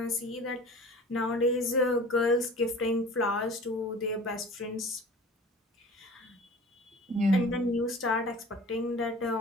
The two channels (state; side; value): normal; both; correlation 0.42